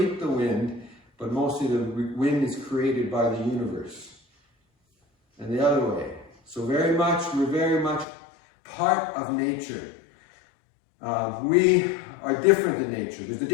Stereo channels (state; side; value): drops out; right; at 8.1 s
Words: the wind, but mostly the wind is created by the universe. And the other way. So we're very much part of nature. We are different in nature. There's a